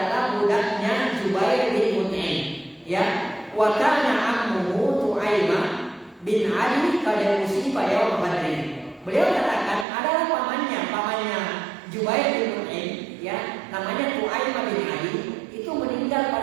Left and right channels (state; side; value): drops out; left; at 9.9 s